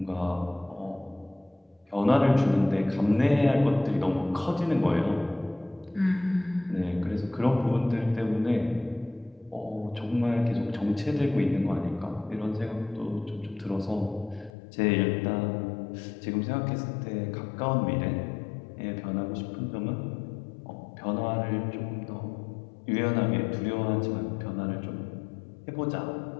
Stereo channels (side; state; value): right; drops out; at 14.5 s